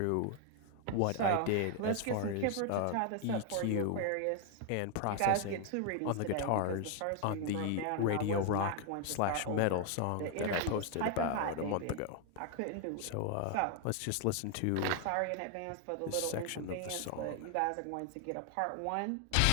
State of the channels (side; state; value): both; different; correlation 0.00